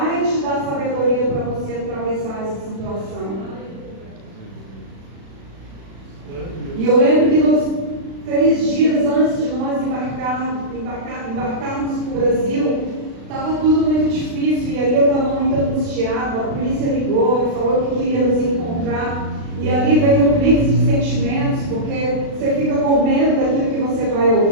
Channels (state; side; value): late; left; 36 ms